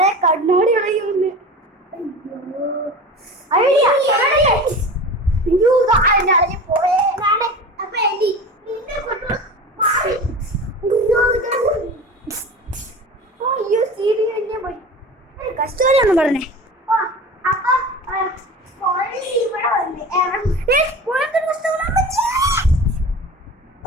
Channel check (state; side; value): normal; both; correlation 0.34